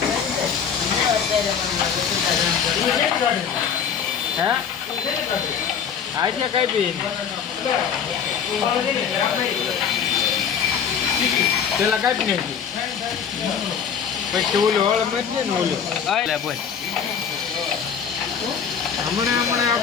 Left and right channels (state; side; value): quieter; right; 7.4 dB